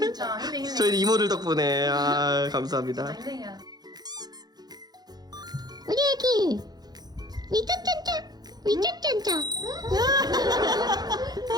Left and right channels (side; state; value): left; late; 0.19 ms